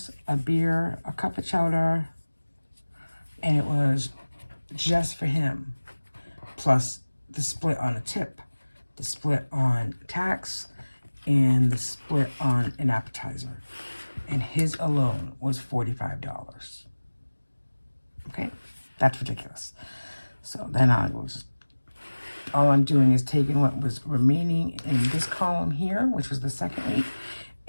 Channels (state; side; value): inverted; both; correlation -1.00